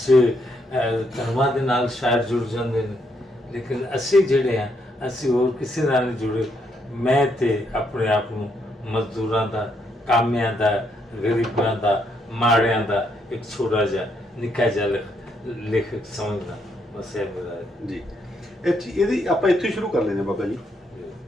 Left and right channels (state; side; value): normal; both; correlation 0.75